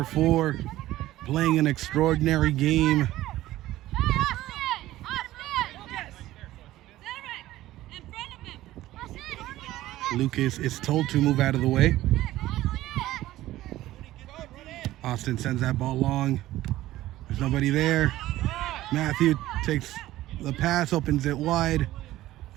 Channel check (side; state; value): left; quieter; 15.5 dB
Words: 4 playing an extraordinary game. Lucas is told to move out of the way. Austin sends that ball long. There's nobody there. Matthew takes the pass, opens it wide,